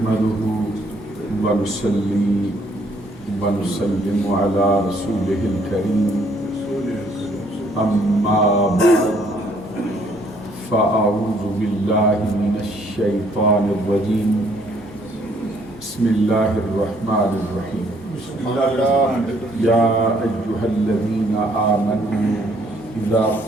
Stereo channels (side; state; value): both; normal; correlation 0.65